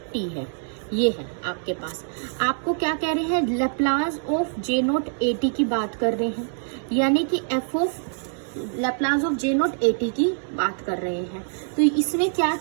T है, ये है आपके पास। आपको क्या कह रहे हैं Laplace of J naught a T की बात कर रहे हैं, यानी कि F of Laplace of J naught a T की बात कर रहे हैं। तो इसमें क्या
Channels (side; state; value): left; silent; 62 dB below the other